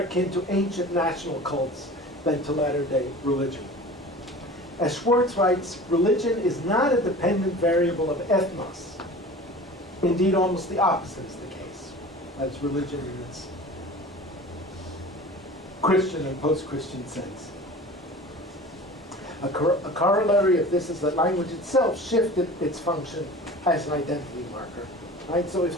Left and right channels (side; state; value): both; normal; correlation 0.39